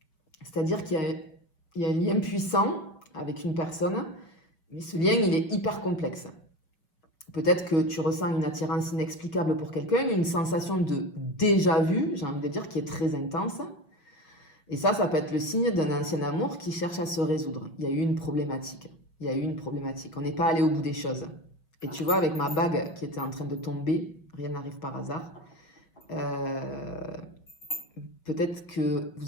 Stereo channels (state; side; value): late; right; 6.2 ms